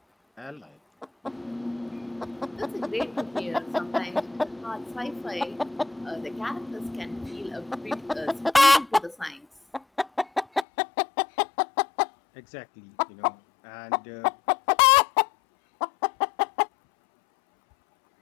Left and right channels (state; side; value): drops out; right; at 10.7 s